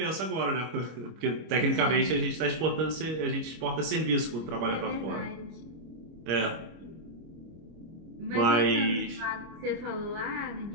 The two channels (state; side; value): late; left; 25 ms